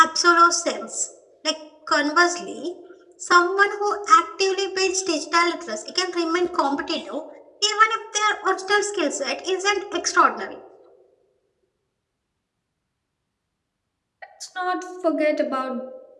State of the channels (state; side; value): identical; both; correlation 1.00